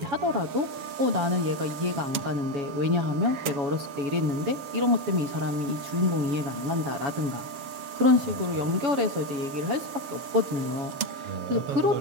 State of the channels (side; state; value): left; late; 7.3 ms